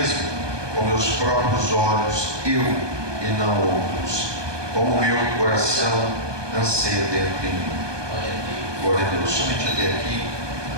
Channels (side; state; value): left; late; 1.2 ms